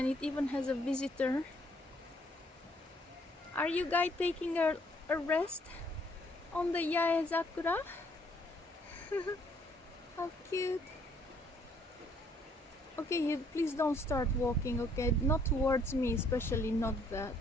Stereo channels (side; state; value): both; normal; correlation 0.65